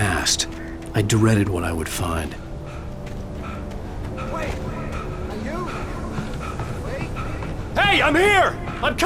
I dreaded what I would find. Wait! Are you? Wait! Hey, I'm here! I'm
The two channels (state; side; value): identical; both; correlation 1.00